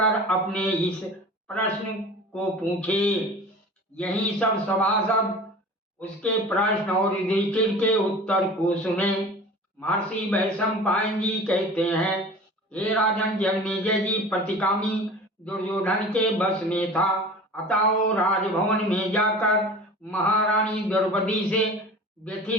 अपने इस प्रश्न को पूछे। यही सब सभासद उसके प्रश्न और युधिष्ठिर के उत्तर को सुने। महर्षि वैशंपायन जी कहते हैं, हे राजन जन्मेजय जी, प्रतिकामी दुर्योधन के बस में था, अतः वो राजभवन में जाकर महारानी द्रौपदी से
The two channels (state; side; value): normal; both; correlation 0.39